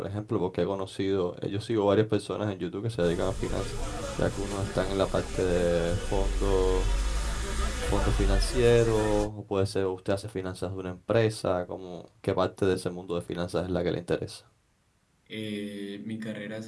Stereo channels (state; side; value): identical; both; correlation 1.00